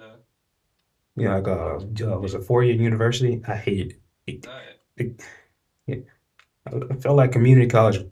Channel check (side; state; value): both; identical; correlation 1.00